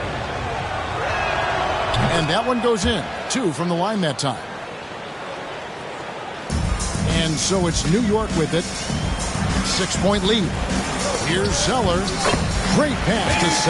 And that one goes in. 2 from the line that time. And so it's New York with it. 6-point lead. Here's Zeller. Great pass to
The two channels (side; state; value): both; identical; correlation 1.00